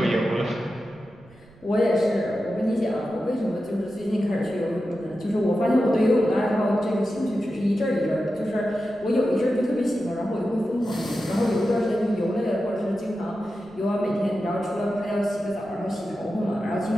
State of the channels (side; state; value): right; noise; rumble, 25 dB below the sound